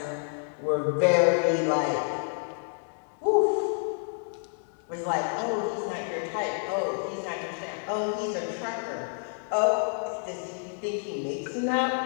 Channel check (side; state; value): right; silent; 59 dB below the other